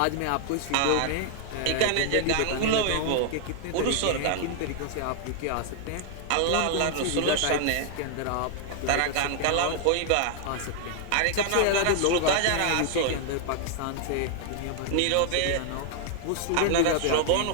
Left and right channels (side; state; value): both; different; correlation 0.00